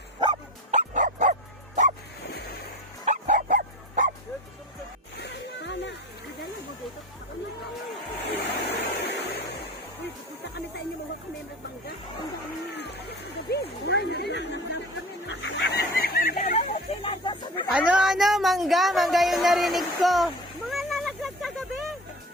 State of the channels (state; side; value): normal; both; correlation 0.36